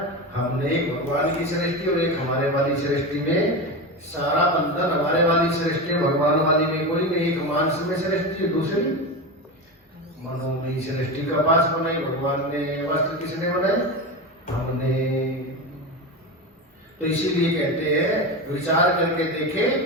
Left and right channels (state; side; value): normal; both; correlation 0.21